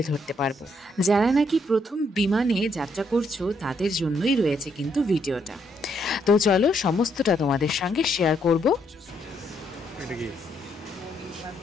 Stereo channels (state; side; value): normal; both; correlation 0.73